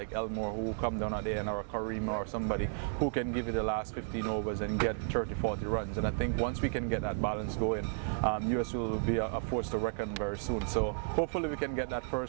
Elmore who come down at the end, or a Karima or somebody who can give it the last 15 overs and get 30-40 runs. And I think once we can get that balance going, US will be a force to reckon very soon. So hopefully we can get that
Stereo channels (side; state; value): left; silent; 55 dB below the other